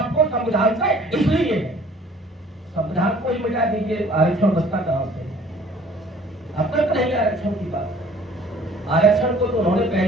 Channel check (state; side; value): normal; both; correlation 0.53